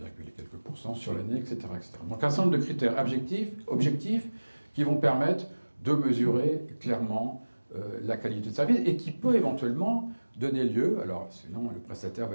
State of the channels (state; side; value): inverted; both; correlation -1.00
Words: quelques % sur l'année, etc., etc. Donc un certain nombre de critères objectifs qui vont permettre de mesurer clairement la qualité de service et qui peut éventuellement donner lieu, alors sinon le prestataire